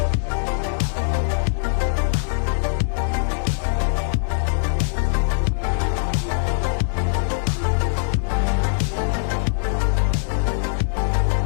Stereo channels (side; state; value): right; silent; digital silence